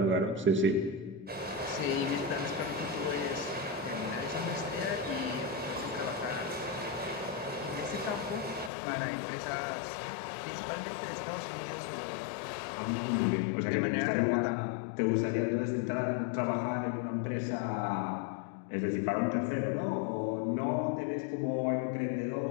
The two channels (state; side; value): drops out; right; at 8.7 s